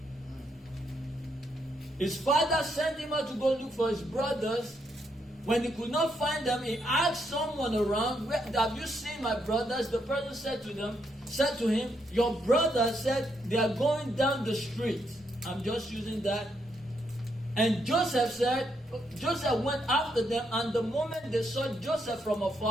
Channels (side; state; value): both; normal; correlation 0.77